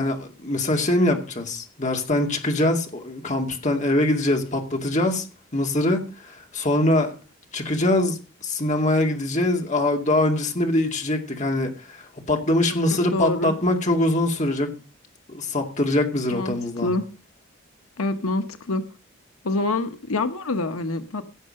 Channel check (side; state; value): both; normal; correlation 0.46